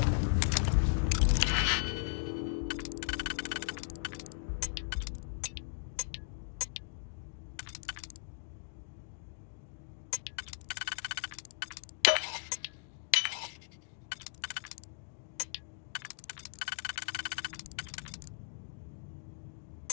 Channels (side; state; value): right; silent; digital silence